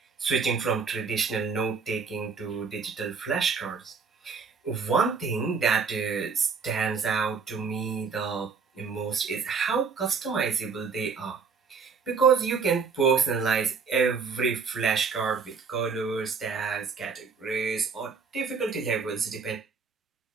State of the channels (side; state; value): left; quieter; 5.4 dB